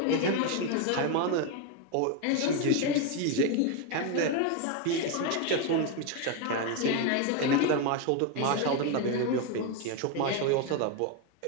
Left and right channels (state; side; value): different; both; correlation 0.02